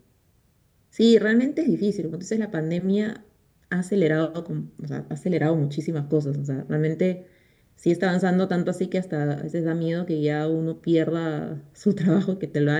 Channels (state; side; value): identical; both; correlation 1.00